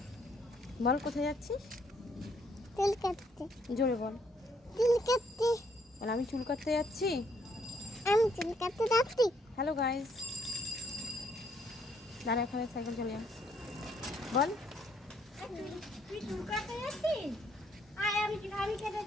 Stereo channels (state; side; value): normal; both; correlation 0.69